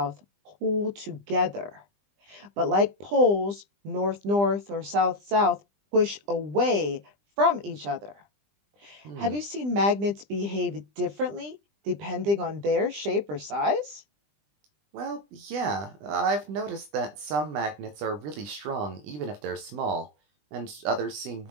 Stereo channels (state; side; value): late; left; 20 ms